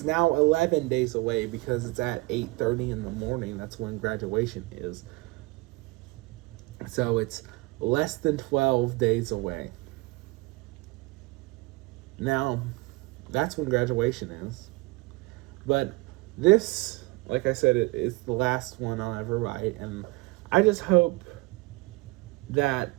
now 11 days away, because it's at 8:30 in the morning. That's when graduation is. So it's less than 12 days away. Now, that's when graduation is. But this, like I said, it is the last one I'll ever write. And I just hope that,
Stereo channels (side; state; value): left; quieter; 23.5 dB